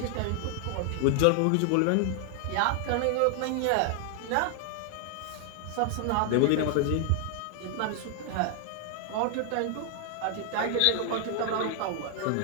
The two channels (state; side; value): different; both; correlation 0.00